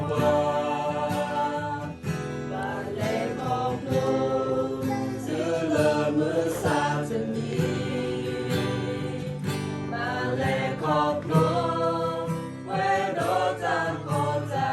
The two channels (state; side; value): identical; both; correlation 1.00